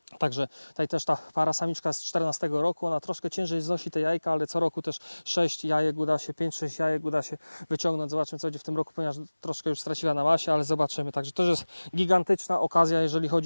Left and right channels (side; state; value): both; inverted; correlation -1.00